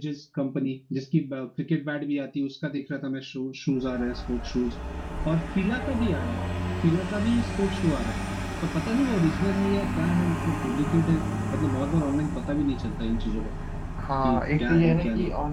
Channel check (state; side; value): identical; both; correlation 1.00